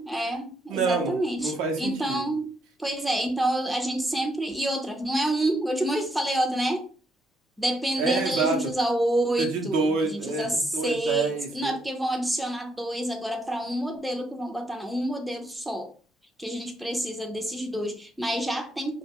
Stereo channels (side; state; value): both; normal; correlation 0.76